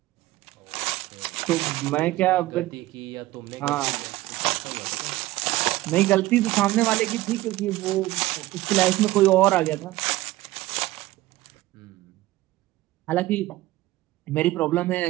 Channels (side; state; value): left; quieter; 17.3 dB